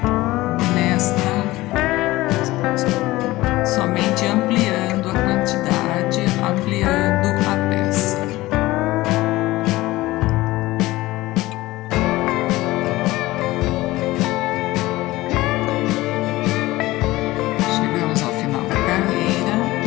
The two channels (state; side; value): quieter; right; 18.4 dB